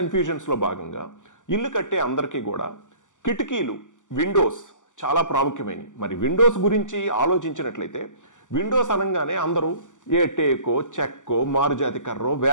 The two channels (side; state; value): right; late; 0.87 ms